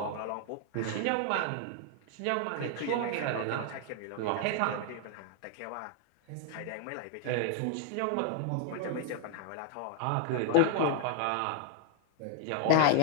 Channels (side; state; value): both; different; correlation 0.00